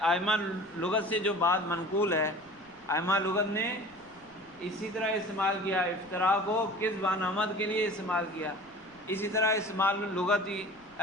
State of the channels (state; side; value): noise; left; rumble, 29 dB below the sound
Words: لغت سے جو بات منقول ہے، ائمہ لغت نے اسی طرح استعمال کیا، افتراء کو کذب عن عمد کے لیے استعمال کیا، اسی طرح استعمال لغتی